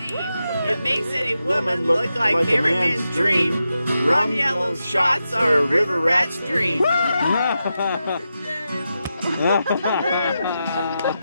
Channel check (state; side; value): inverted; both; correlation -0.88